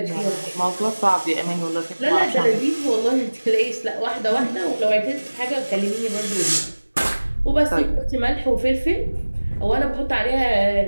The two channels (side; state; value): both; inverted; correlation -1.00